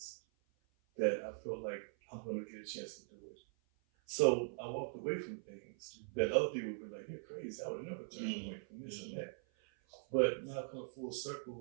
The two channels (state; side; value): silent; left; 50 dB below the other